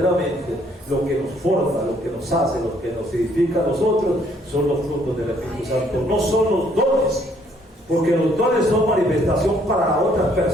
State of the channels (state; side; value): normal; both; correlation 0.65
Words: lo que nos forma, lo que nos hace, lo que nos edifica a nosotros, son los frutos del Espíritu Santo. No son los dones, porque los dones son manifestación para otras